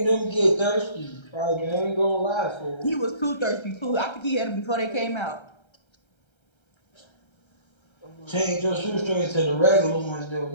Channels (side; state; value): right; late; 1.3 ms